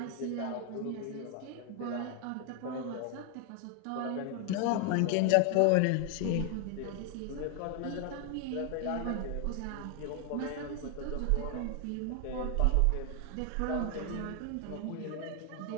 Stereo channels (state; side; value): different; both; correlation 0.00